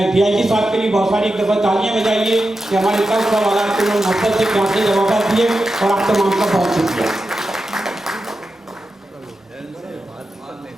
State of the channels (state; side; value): normal; both; correlation 0.90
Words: DIG साहब के लिए बहुत सारी एक दफ़ा तालियां बजाइए कि हमारे सब सवाल को नफरत से प्यार से जवाब दिए, और आप तमाम का बहुत शुक्रिया।